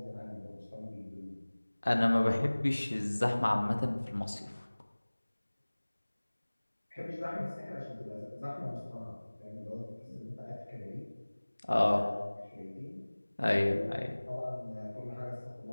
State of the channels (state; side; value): inverted; both; correlation -1.00